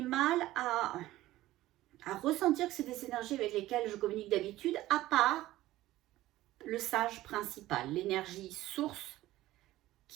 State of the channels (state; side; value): quieter; left; 16.0 dB